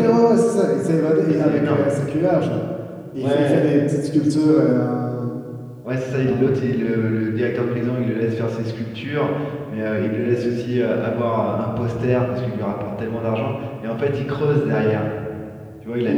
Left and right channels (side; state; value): both; identical; correlation 1.00